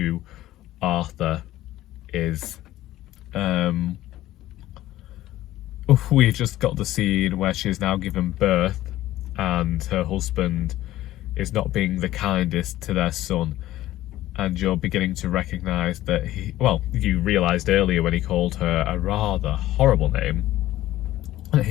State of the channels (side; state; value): right; quieter; 14.9 dB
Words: Arthur is. We've just got the scene where she's now given birth and her husband is not being the kindest to their son, and you're beginning to recognise that you realised earlier when he called her a rather horrible name, that